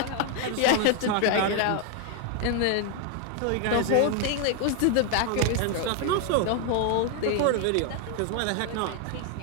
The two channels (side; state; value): both; different; correlation 0.01